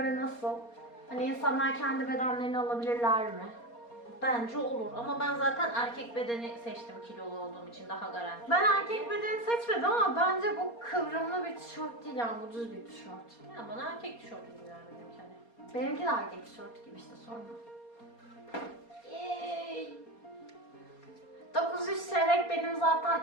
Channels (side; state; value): right; late; 4.3 ms